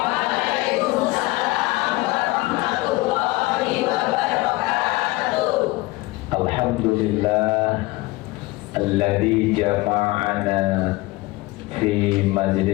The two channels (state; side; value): quieter; right; 20.8 dB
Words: warahmatullahi wabarakatuh. Alhamdulillah alladzi jama'ana fi